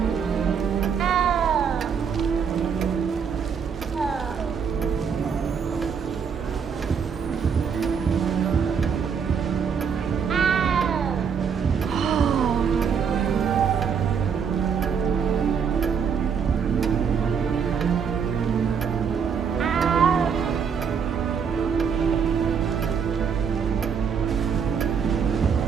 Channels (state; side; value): quieter; left; 6.7 dB